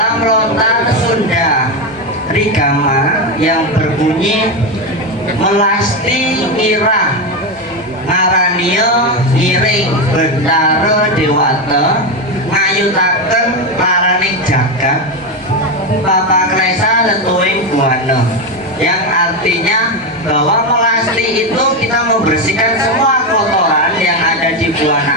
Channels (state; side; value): normal; both; correlation 0.12